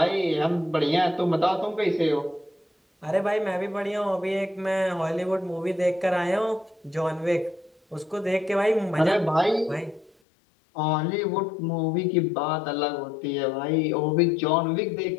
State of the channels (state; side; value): drops out; right; at 10.1 s